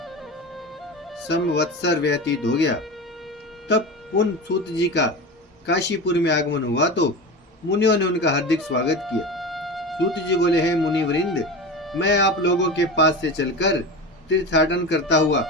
संवत्सर व्यतीत हो गया। तब पुन सूत जी का काशीपुर में आगमन हुआ तो मुनियों ने उनका हार्दिक स्वागत किया। सूत जी बोले, हे मुनिवृंद, मैं आप लोगों के पास से चलकर तीर्थाटन करता हुआ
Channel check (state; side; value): normal; both; correlation 0.27